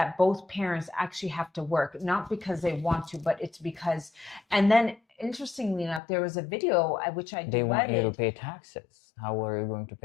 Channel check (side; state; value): right; drops out; at 6.0 s